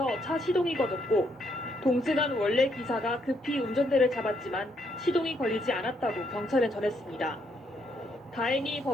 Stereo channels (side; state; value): both; normal; correlation 0.74